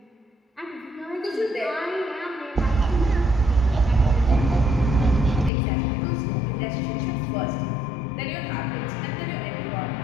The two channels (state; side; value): drops out; right; at 5.5 s